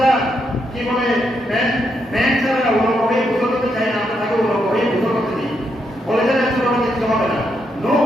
কি বলে প্যান্ট ছাড়া ওরকম হয়ে গোসল করতে চায় না, আমরা তাকে ওরকম হয়ে গোসল করতে দিই, বলে যে ছোট বাচ্চা কিছু হবে না। নো,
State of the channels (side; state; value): both; normal; correlation 0.80